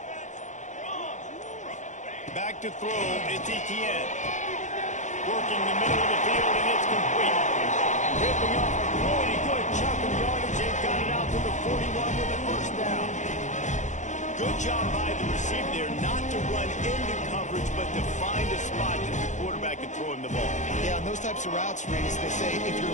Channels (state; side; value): late; right; 0.35 ms